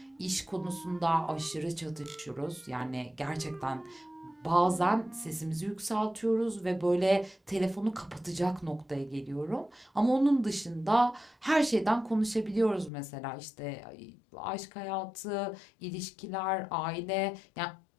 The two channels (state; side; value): drops out; right; at 12.9 s